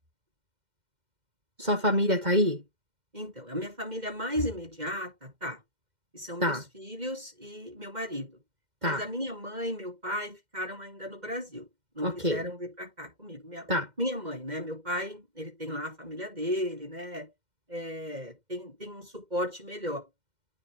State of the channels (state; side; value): late; left; 2.1 ms